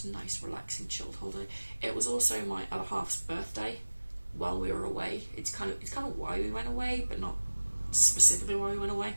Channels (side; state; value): both; inverted; correlation -1.00